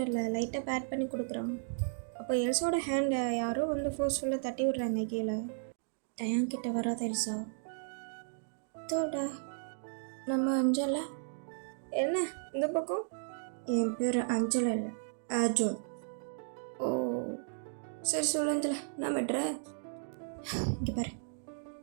லைட்டாக பேட் பண்ணி கொடுக்குறான். அப்போ எல்சாவோட ஹேண்டை யாரோ வந்து ஃபோர்ஸ்ஃபுல்லாக தட்டி விட்றாங்க கீழே. டயாங் கிட்ட வராத எல்சா. தோடா நம்ம அஞ்சலை. என்ன இந்த பக்கம்? என் பேர் அஞ்சலை இல்லை, அர்ஜுன். ஓ சரி சொல்லு அஞ்சலை, நான் விட்றேன். இங்கே பாரு,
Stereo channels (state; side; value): silent; left; digital silence